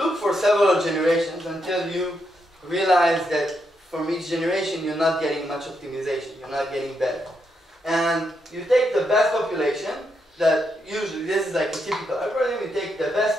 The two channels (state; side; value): normal; both; correlation 0.81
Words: for several generations until you realize that from each generation you're not getting much optimization, you're not getting better. And you take the best population, that usually, this is like a typical algorithm, you take the best